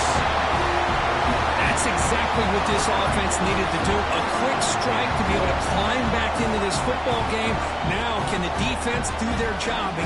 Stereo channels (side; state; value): both; identical; correlation 1.00